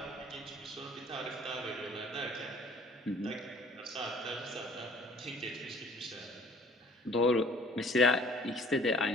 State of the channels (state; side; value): normal; both; correlation 0.52